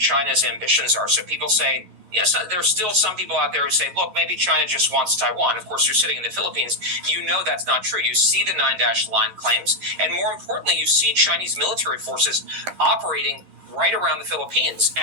ambitions are. So people say, yes, there's still some people out there who say, look, maybe China just wants Taiwan. Of course, you're sitting in the Philippines. You know that's not true. You see the 9-dash line claims. And more importantly, you see Chinese military forces operating right around the Philippines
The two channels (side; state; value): left; late; 11 ms